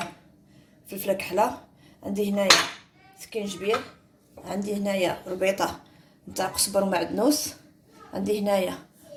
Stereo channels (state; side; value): identical; both; correlation 1.00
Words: فلفله كحله، عندي هنايا سكينجبير، عندي هنايا ربيطه نتاع قزبر ومعدنوس، عندي هنايا